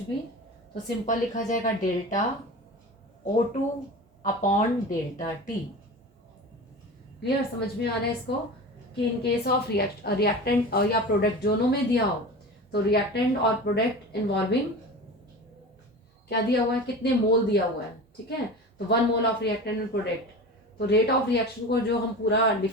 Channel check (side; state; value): both; normal; correlation 0.32